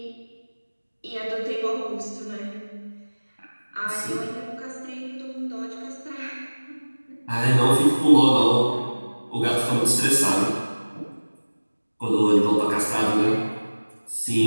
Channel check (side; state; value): both; inverted; correlation -1.00